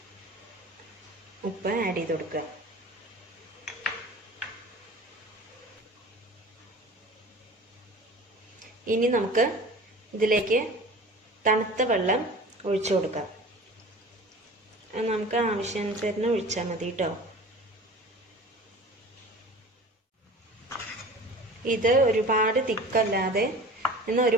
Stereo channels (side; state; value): both; normal; correlation 0.40